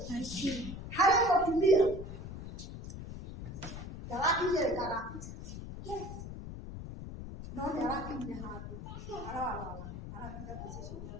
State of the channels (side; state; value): left; noise; rumble, 9 dB below the sound